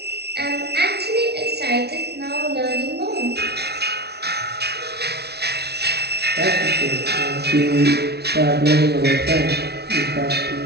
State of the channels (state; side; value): late; left; 0.48 ms